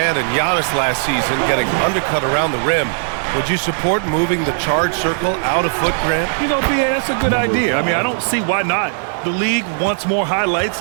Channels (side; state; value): left; silent; digital silence